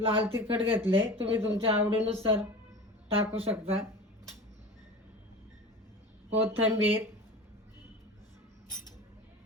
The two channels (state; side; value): normal; both; correlation 0.34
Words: तिखट घेतले, तुम्ही तुमच्या आवडीनुसार टाकू शकता, कोथिंबीर.